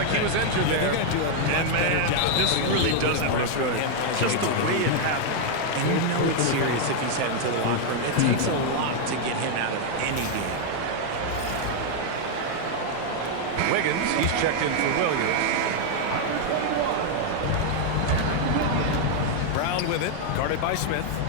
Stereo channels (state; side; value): different; both; correlation 0.00